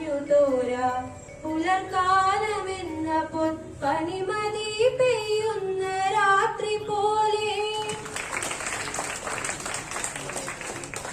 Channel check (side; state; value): both; identical; correlation 1.00